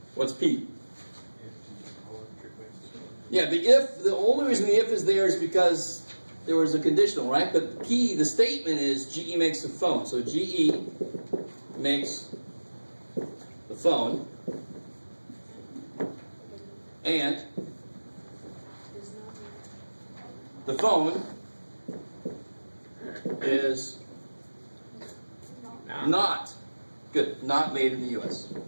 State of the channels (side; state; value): both; inverted; correlation -1.00